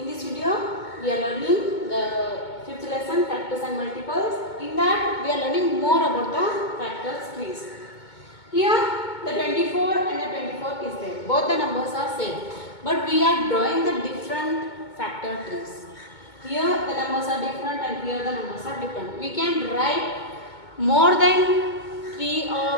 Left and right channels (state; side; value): late; right; 2.2 ms